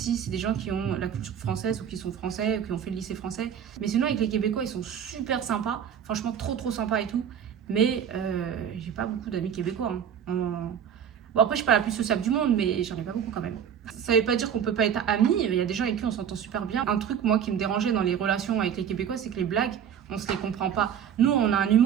c'est des gens qui ont la culture française ou qui sont français ou qui ont fait le lycée français. Mais sinon, avec les Québécois, ils sont super sympas. Franchement, trop sympas et tout. Mais j'ai pas beaucoup d'amis québécois. Hein. Bon, après, je suis pas la plus sociable du monde, mais j'en ai pas beaucoup quand même. Ça veut pas dire qu'on peut pas être amis. Il y a des gens avec qui on s'entend super bien. Un truc, moi, qui me dérangeait dans les relations avec les Québécois, c'est que les blagues, on se les comprend pas. Nous, on a un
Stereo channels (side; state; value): left; quieter; 8.5 dB